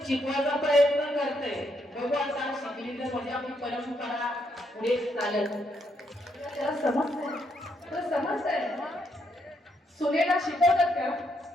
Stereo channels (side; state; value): both; normal; correlation 0.76